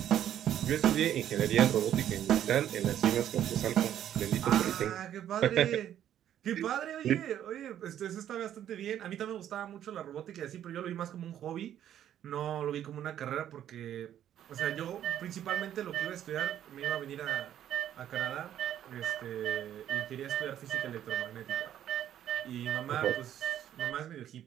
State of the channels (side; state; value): left; quieter; 10.8 dB